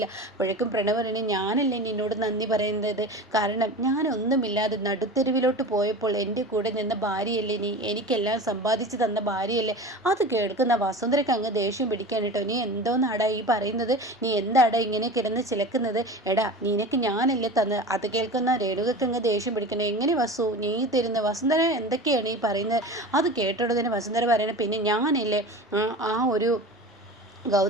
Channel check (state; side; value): normal; both; correlation 0.33